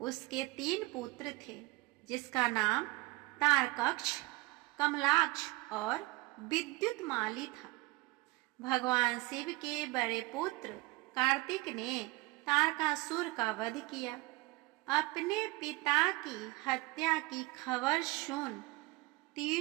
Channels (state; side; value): quieter; left; 22.5 dB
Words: 3 पुत्र थे, जिसका नाम तारकक्ष, कमलाक्ष और विद्युतमाली था। भगवान शिव के बड़े पुत्र कार्तिक ने तारकासुर का वध किया। अपने पिता की हत्या की खबर सुन